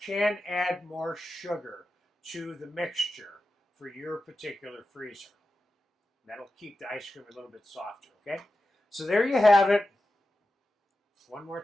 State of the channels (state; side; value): normal; both; correlation 0.92